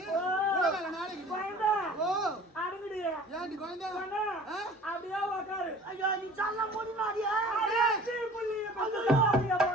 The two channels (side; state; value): both; normal; correlation 0.45